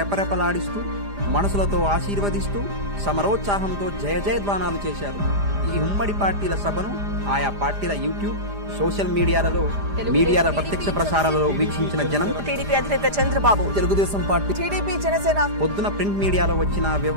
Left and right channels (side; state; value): left; late; 5.0 ms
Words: మనసులతో ఆశీర్వదిస్తూ సమరోత్సాహంతో జయ జయధ్వానాలు చేశారు. ఈ ఉమ్మడి పార్టీల సభను ఆయా పార్టీల యూట్యూబ్, సోషల్ మీడియాలలో ప్రత్యక్ష ప్రసారాలలో వీక్షించిన జనం టీడీపీ అధినేత చంద్రబాబు, తెలుగుదేశం పార్టీ, టీడీపీ, జనసేన పొద్దున ప్రింట్ మీడియాలో వచ్చిన